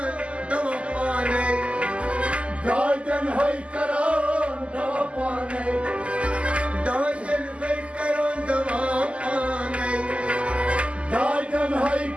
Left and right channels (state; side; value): late; left; 0.058 ms